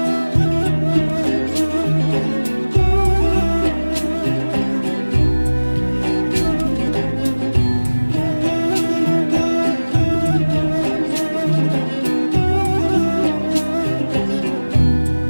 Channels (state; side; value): inverted; both; correlation -1.00